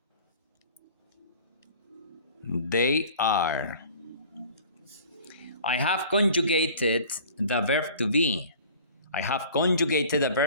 they are. I have conjugated the verb to be. I have conjugated the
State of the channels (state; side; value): inverted; both; correlation -0.47